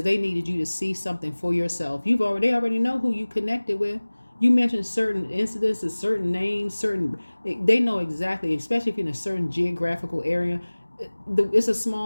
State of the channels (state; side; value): inverted; both; correlation -1.00